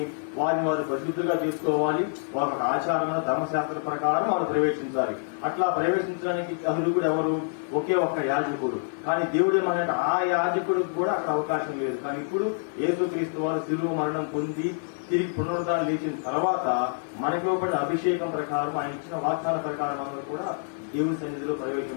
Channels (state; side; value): silent; right; digital silence